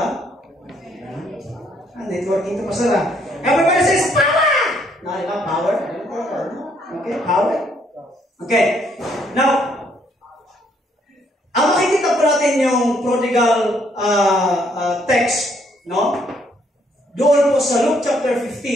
Networking ito pa sila. Everybody says, power! No, diba? Power? Okay, power. Okay. Now, ang makikita po natin yung prodigal text, no? Doon po sa Luke chapter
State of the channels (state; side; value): normal; both; correlation 0.69